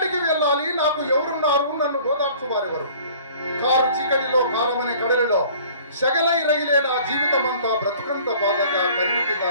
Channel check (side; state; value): both; inverted; correlation -0.50